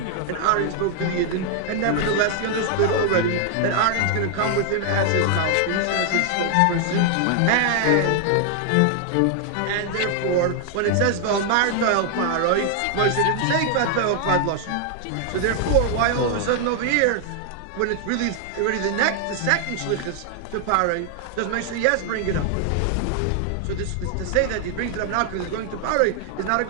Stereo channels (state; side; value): different; both; correlation 0.00